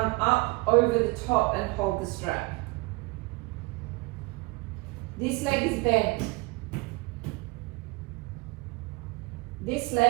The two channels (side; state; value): left; quieter; 24.8 dB